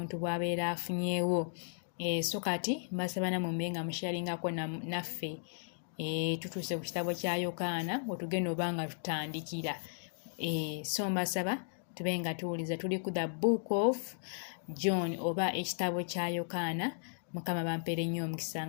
bw'abeera afunyeewo. So kati mbasaba namwe mube nga musharingako naffe tutuuse ku kitabo kya Yokaana we tugenda oba nga tutandikira. So mbasaba tube nga tuwuliza. Tuli ku the book of John oba ekitabo kya Yokaana. Mukama bampeere nnyo omukisa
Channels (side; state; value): right; silent; digital silence